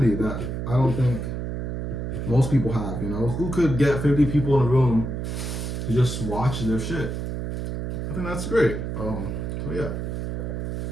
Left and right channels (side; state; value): right; noise; hum, 4 dB below the sound